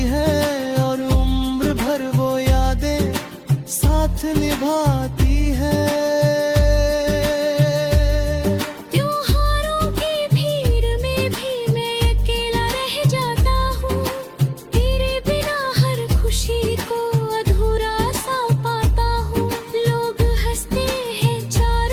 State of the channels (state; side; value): identical; both; correlation 1.00